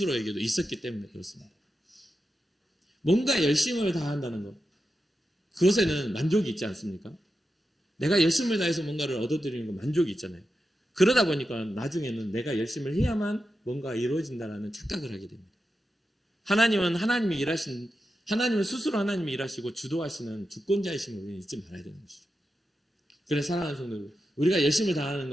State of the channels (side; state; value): both; normal; correlation 0.89